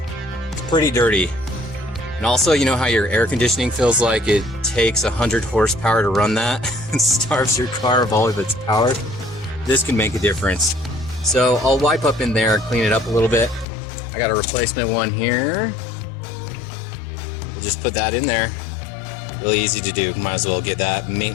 It's pretty dirty. And also, you know how your air conditioning feels like it takes 100 horsepower to run that and starves your car of all of its power? This can make a difference. So I'll wipe up in there, clean it up a little bit. I got a replacement one here. We'll just put that in there. Really easy to do. Might as well get that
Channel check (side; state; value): right; drops out; at 13.7 s